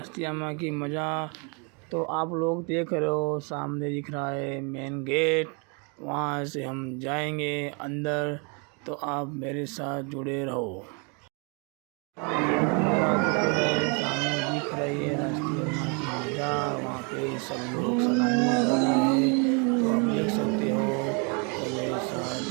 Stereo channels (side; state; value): left; quieter; 34.8 dB